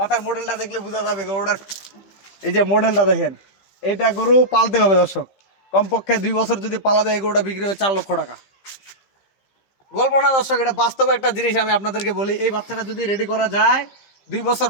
মডেলটা দেখলে বোঝা যাবে গরুটার, এই যে মডেলটা দেখেন। এইটা গরু পালতে হবে দর্শক, কমপক্ষে 2 বছর যদি পালা যায় এই গরুটা বিক্রি হবে 4 লক্ষ টাকা। গল্প না দর্শক, এটা বাস্তবে একটা জিনিস। আমি আপনাদেরকে বলি, এই বাচ্চাটা যদি রেডি করা যায় 2 বছর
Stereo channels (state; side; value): late; right; 15 ms